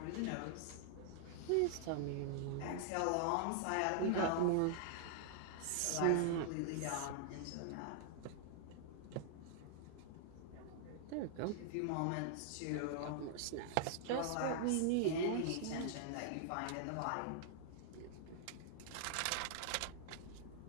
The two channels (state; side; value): different; both; correlation -0.01